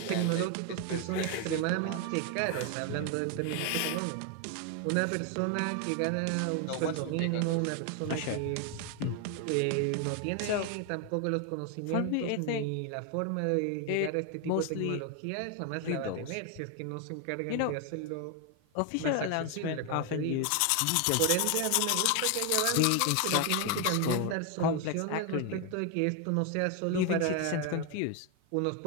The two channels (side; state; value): both; different; correlation 0.01